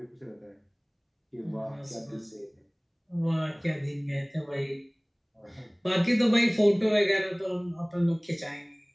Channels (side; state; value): both; identical; correlation 1.00